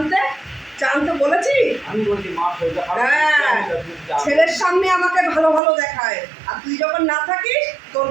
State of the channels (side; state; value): left; drops out; at 5.6 s